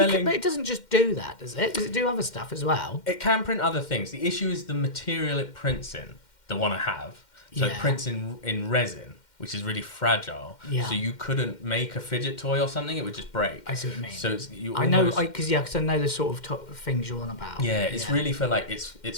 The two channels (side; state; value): right; late; 2.1 ms